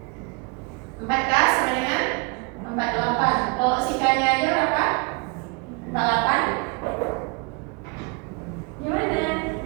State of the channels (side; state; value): left; quieter; 30.9 dB